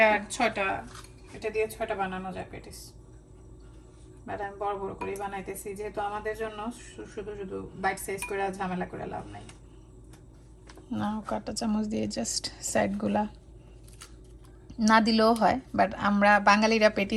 6টা, এটা দিয়ে 6টা বানানো যায় পেটিস। বাট আমি বড় বড় করে বানাইতেছি, যেহেতু আমাদের জন্য শুধু শুধু বাইট সাইজ করে ঝামেলা করে লাভ নাই। না, কাঁটা চামচ দিয়ে জাস্ট সাইডগুলা না দিলেও হয়, বাট আমরা বাঙালিরা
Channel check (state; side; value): identical; both; correlation 1.00